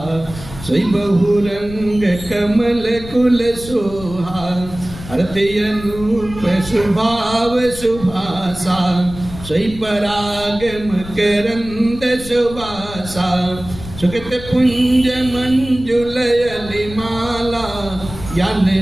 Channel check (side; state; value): left; noise; rumble, 13 dB below the sound